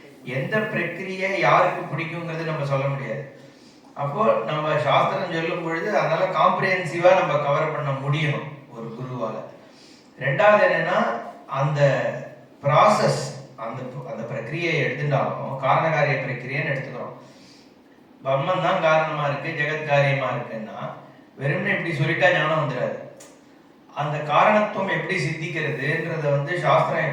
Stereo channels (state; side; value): identical; both; correlation 1.00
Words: எந்த பிரக்கிரியை யாருக்கு பிடிக்குங்கிறது நம்ம சொல்ல முடியாது. அப்போ நம்ம சாஸ்திரம் சொல்லும் பொழுது அதனால காம்ப்ரிஹென்சிவா நம்ம கவர் பண்ண முடியணும் ஒரு குருவால. ரெண்டாவது என்னன்னா, அந்த ப்ராசஸ், அந்த அந்த பிரக்கிரியை எடுத்துட்டாலும் காரணகாரிய பிரக்கிரியன்னு எடுத்துக்கிறோம். பிரம்மன் தான் காரணமா இருக்கு, ஜெகத் காரியமா இருக்குன்னா வெறும்னே இப்படி சொல்லிட்டா ஞானம் வந்துடாது. அந்த காரணத்துவம் எப்படி சித்திக்கிறதுன்றத வந்து சாஸ்திரம்